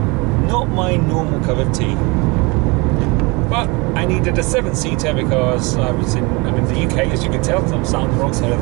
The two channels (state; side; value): quieter; left; 26.9 dB